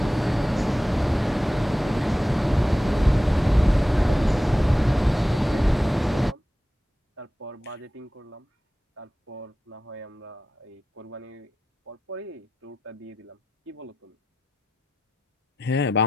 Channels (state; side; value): normal; both; correlation 0.92